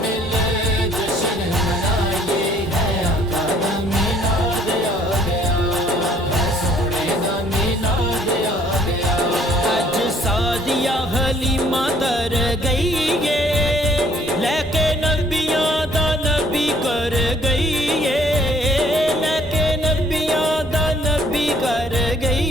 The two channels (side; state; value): both; normal; correlation 0.61